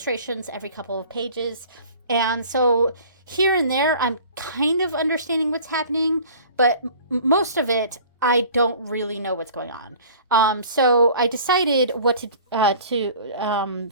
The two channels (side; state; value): both; inverted; correlation -0.46